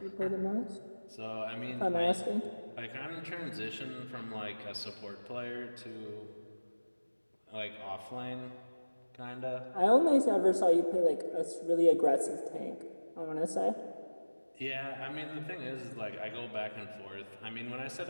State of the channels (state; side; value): inverted; both; correlation -1.00